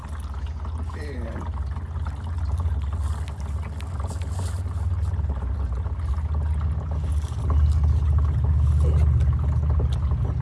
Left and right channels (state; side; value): identical; both; correlation 1.00